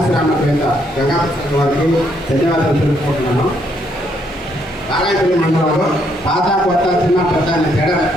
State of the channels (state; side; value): normal; both; correlation 0.72